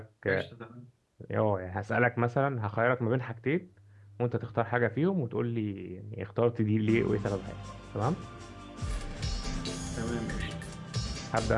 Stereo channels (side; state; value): both; identical; correlation 1.00